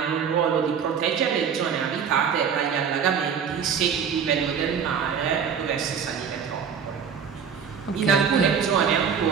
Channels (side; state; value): left; quieter; 7.1 dB